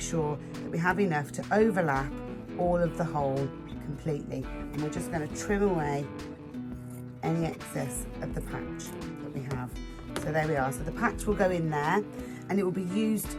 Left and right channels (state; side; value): identical; both; correlation 1.00